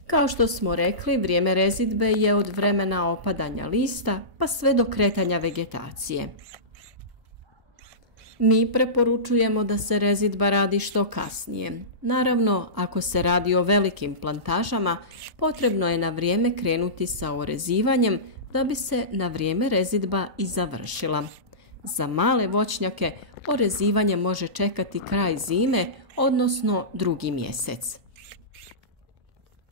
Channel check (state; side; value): late; left; 1.0 ms